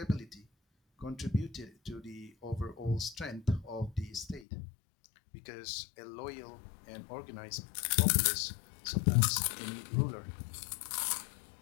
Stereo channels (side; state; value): right; drops out; at 4.5 s